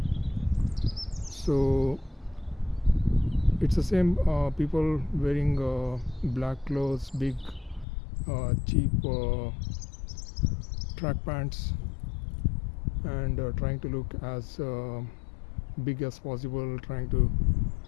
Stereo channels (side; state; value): right; drops out; at 7.9 s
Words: So it's the same people wearing black clothes, big cheap track pants, and trying to look as big as possible, trying to